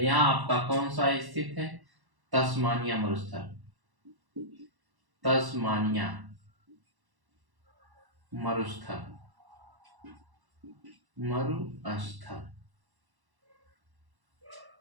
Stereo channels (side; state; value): left; late; 1.1 ms